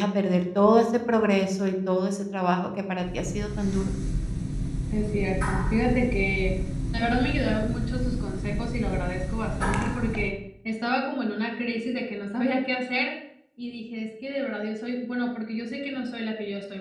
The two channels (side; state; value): both; identical; correlation 1.00